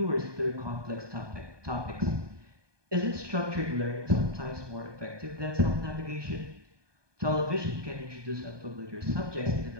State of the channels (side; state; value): left; late; 1.2 ms